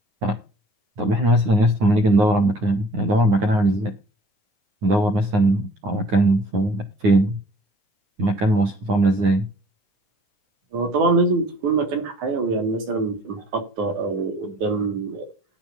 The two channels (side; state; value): left; late; 9.6 ms